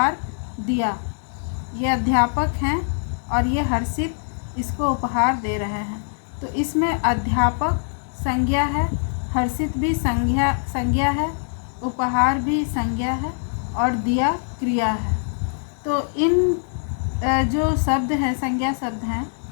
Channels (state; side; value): silent; right; digital silence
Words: दिया। ये अध्यापक हैं और ये हर्षित इसको उपहार दे रहे हैं। तो इसमें अध्यापक संज्ञा है, हर्षित भी संज्ञा है, उपहार भी संज्ञा है और दिया क्रिया है। तो इन जो शब्द हैं, संज्ञा शब्द हैं,